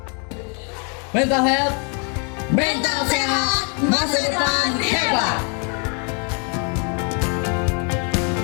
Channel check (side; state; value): right; quieter; 37.5 dB